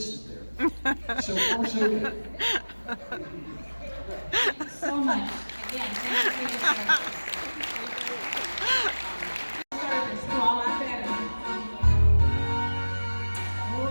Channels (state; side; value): inverted; both; correlation -1.00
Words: there. So far, so good. So much. Again, thank you for your service. Service to all our veterans.